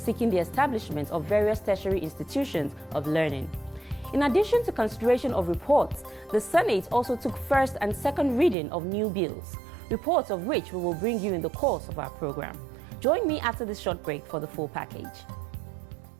the establishment of various tertiary institutions of learning. In addition to consideration of reports, the Senate also took first and second reading of new bills, reports of which we will bring you in the course of our program. Join me after this short break for the full package.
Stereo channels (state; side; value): drops out; left; at 8.6 s